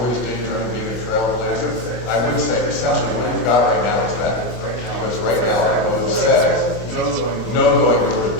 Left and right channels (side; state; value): right; late; 24 ms